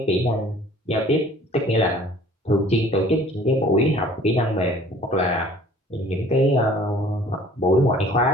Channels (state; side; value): normal; both; correlation 0.52